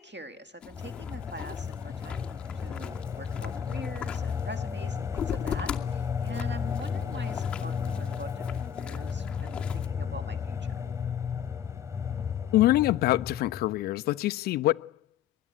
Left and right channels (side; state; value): right; quieter; 9.2 dB